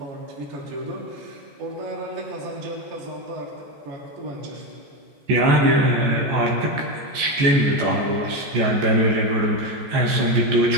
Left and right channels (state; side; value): late; left; 14 ms